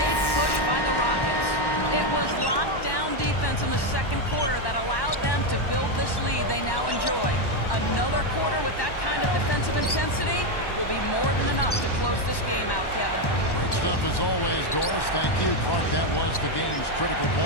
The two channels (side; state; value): right; late; 1.1 ms